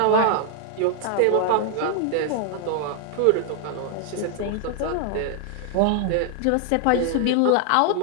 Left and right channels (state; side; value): different; both; correlation 0.00